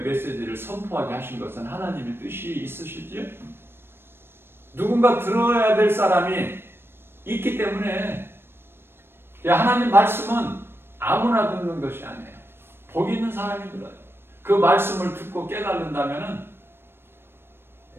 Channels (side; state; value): left; late; 0.11 ms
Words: 메시지를 선포하게 하신 것은 하나님의 뜻이 있으시지요? 누군가 들어야 될 사람이 있기 때문에 하나님 말씀은 아무나 듣는 것이 아니에요. 복 있는 사람이 들어요. 그 말씀을 듣고 깨달는다면